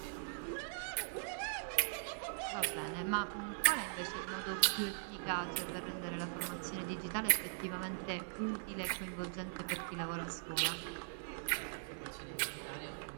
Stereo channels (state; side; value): silent; left; 51 dB below the other